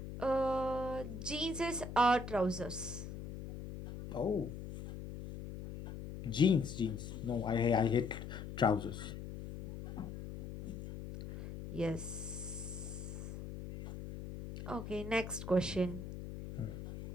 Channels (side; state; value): left; noise; hum, 9 dB below the sound